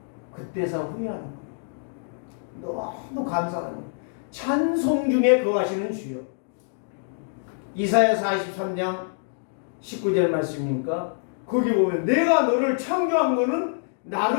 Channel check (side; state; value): right; silent; digital silence